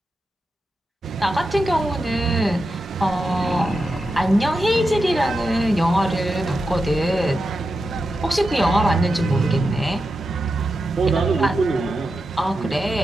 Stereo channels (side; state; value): both; normal; correlation 0.89